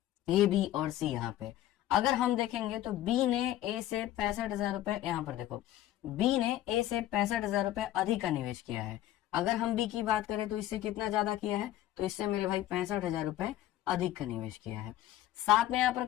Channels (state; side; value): quieter; right; 13.5 dB